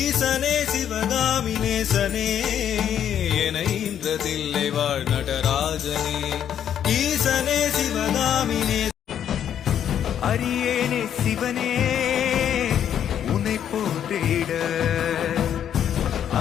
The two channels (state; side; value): quieter; right; 9.5 dB